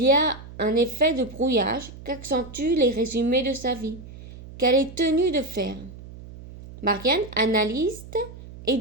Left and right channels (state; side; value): noise; right; hum, 16 dB below the sound